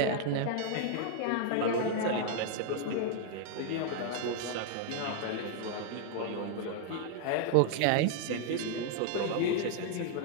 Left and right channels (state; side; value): different; both; correlation -0.01